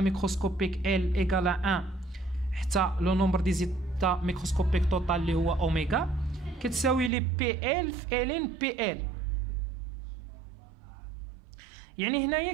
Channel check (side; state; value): left; drops out; at 7.1 s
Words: L égale à 1 حتى لو نومبر دي زيتا ميكروسكوبيك توتال اللي هو اوميغا كتساوي لي بي ال في ال بي ال. يعني هنايا